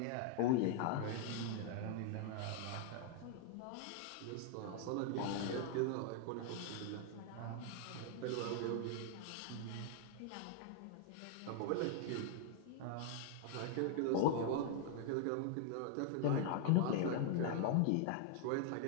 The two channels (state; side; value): different; both; correlation 0.00